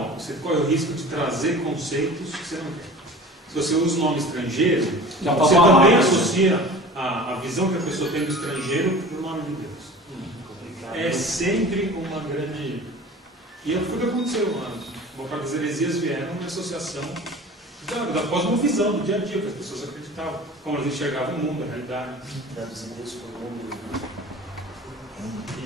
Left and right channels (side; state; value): both; normal; correlation 0.39